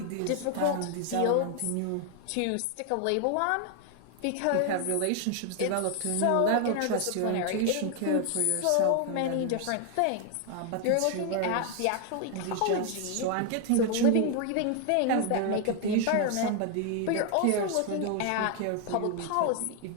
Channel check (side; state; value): both; different; correlation 0.00